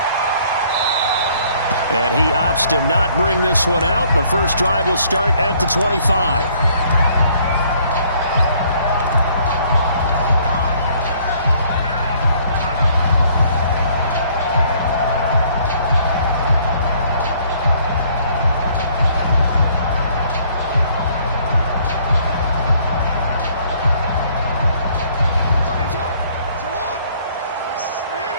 And he opts to not bring this one out. The first drive will start at the 25.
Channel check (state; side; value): inverted; both; correlation -0.62